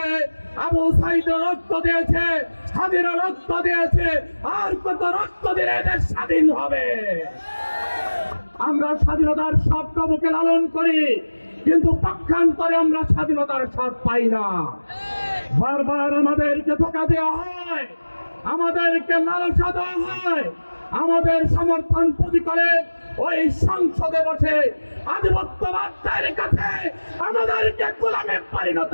আবু সাইদ রক্ত দিয়েছে, স্বাধীন রক্ত দিয়েছে। আর কত রক্ত দিলে দেশ স্বাধীন হবে? আমরা স্বাধীনতার স্বপ্ন বুকে লালন করি, কিন্তু পক্ষান্তরে আমরা স্বাধীনতার স্বাদ পাই না। বারবার আমাদেরকে ধোঁকা দেওয়া হয়, আমাদেরকে লালসা দেওয়া হয়, আমাদের সমর্থন পুঁজি করে ওই সংসদে বসে আধিপত্যবাদের কাছে আমাদেরকে গোলামে পরিণত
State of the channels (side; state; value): both; inverted; correlation -1.00